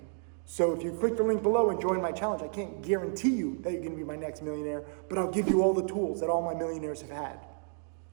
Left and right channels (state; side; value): silent; left; 57 dB below the other